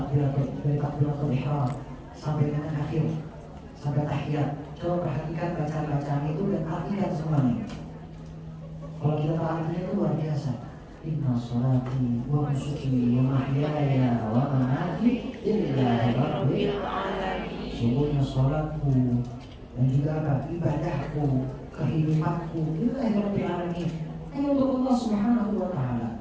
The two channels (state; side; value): identical; both; correlation 1.00